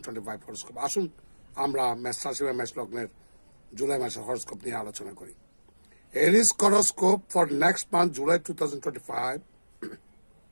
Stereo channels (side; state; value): both; inverted; correlation -1.00